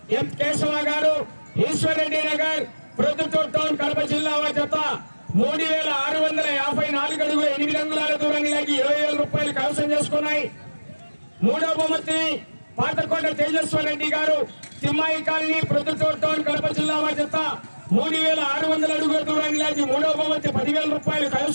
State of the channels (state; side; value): inverted; both; correlation -1.00